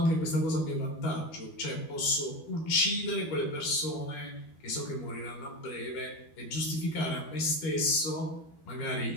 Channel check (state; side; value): late; right; 12 ms